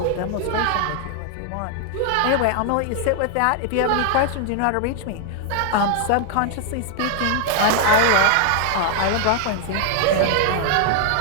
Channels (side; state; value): both; different; correlation 0.00